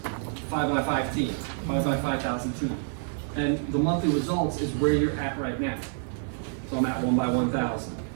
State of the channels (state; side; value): silent; left; 59 dB below the other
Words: 5 by 5 team, 5 by 5,000 team. And the monthly results is where you're at right now. So I'm at 1 by 1,000.